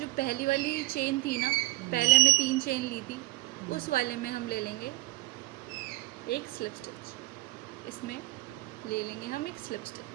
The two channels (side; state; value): left; quieter; 20.5 dB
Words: पहली वाली चेन थी ना, पहले मैं 3 चेन ली थी, उस वाले में हम ले लेंगे एक स्लिप स्टिच। इसमें ले लेंगे हम एक स्लिप